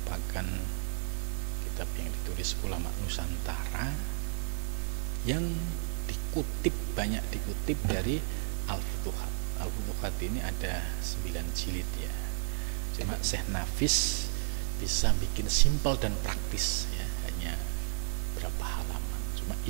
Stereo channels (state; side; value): silent; left; digital silence